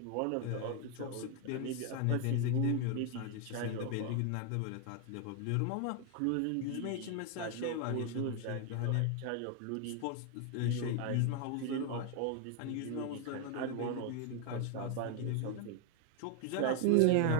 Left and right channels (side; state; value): both; different; correlation 0.00